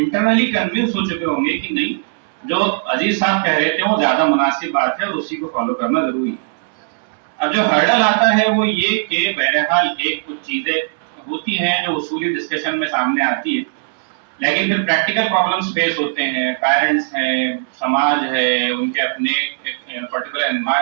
کنونس ہو چکے ہوں گے کہ نہیں جو عزیز صاحب کہہ رہے تھے وہ زیادہ مناسب بات ہے اور اسی کو فالو کرنا ضروری ہے. اب جو ہرڈل آتا ہے وہ یہ کہ بہرحال ایک کچھ چیزیں ہوتی ہیں جو اصولی ڈسکشن میں سامنے آتی ہے, لیکن پھر پریکٹیکل پرابلمز فیس ہوتے ہیں, پیرنٹس ہیں, سماج ہے, ان کے اپنے پرٹیکولر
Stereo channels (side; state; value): left; quieter; 38.6 dB